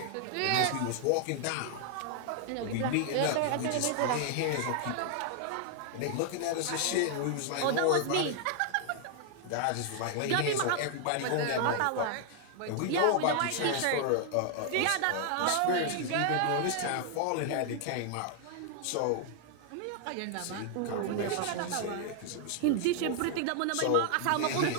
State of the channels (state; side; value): different; both; correlation 0.00